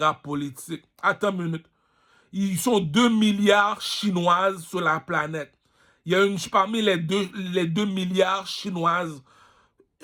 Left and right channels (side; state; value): both; identical; correlation 1.00